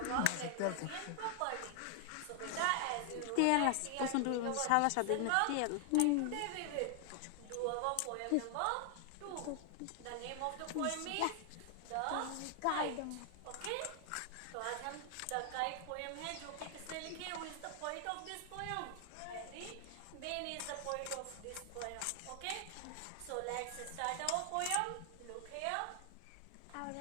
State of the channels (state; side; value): different; both; correlation 0.00